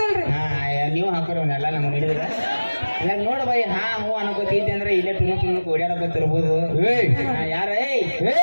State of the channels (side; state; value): both; inverted; correlation -1.00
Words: ನೀವು ಹಾಕೋರವನ್ನೆಲ್ಲ ನಮ್ಗೆ ಹಿಡಿದ್ರ ಇವಾಗ ನೋಡು ಬೈ ಹ್ಞೂ ಅನ್ಕೋತೈತಿ ಅಂದ್ರೆ ಇಲ್ಲೇ ಟುಣುಕ್ ಓಡಾಡಕೋತಿರ್ಬೋದು ಯಾರ